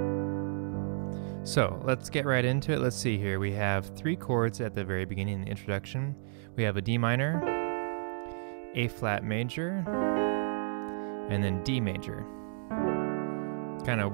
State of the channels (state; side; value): silent; left; digital silence